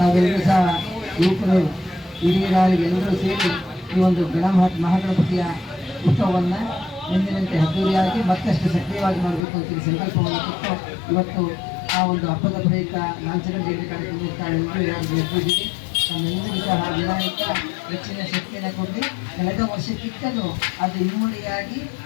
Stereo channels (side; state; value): right; drops out; at 9.5 s